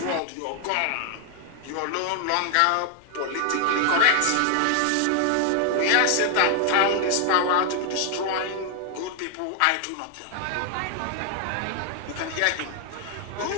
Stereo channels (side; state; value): both; different; correlation 0.00